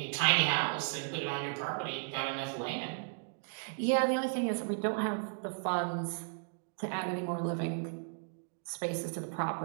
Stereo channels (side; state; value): left; silent; digital silence